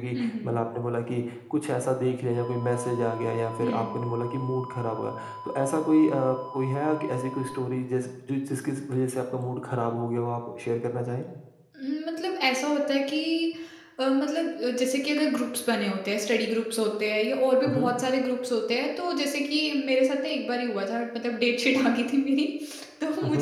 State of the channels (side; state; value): both; identical; correlation 1.00